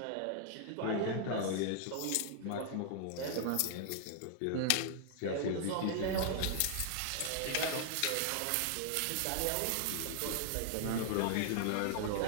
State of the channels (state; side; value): different; both; correlation 0.00